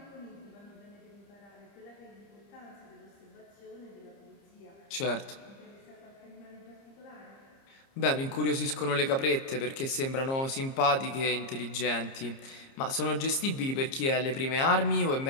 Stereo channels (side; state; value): right; late; 30 ms